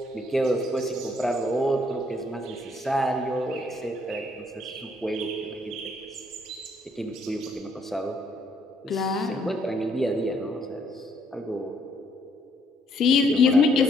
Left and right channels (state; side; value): normal; both; correlation 0.69